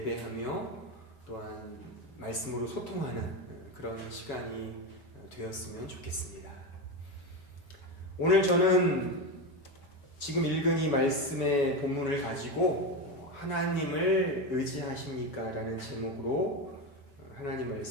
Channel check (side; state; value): right; late; 5.0 ms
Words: 또한 말씀으로 소통하는 그런 시간이 되었으면 좋겠습니다. 오늘 저는 지금 읽은 이 말씀의 본문을 가지고 하나님을 의지하십니까? 라는 제목으로 하나님